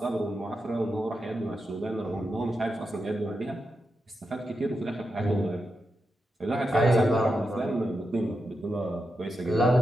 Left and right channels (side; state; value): both; normal; correlation 0.87